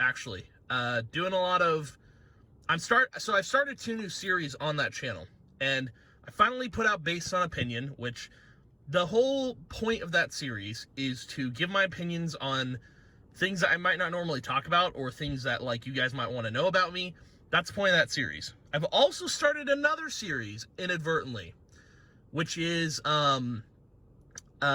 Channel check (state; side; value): identical; both; correlation 1.00